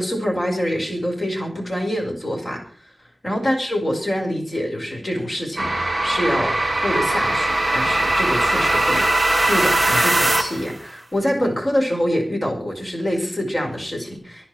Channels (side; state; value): both; normal; correlation 0.95